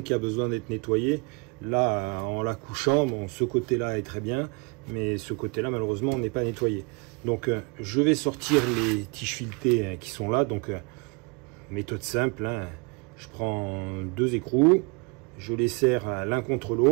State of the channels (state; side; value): quieter; left; 30.7 dB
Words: qui a besoin d'être nettoyé, là, en la couchant, bon, ce côté-là est très bien, mais ce côté-là, malheureusement, n'est pas nettoyé. Donc, je vais sortir les tiges filetées qui sont là. Donc, méthode simple, hein. Je prends 2 écrous, je les serre l'un contre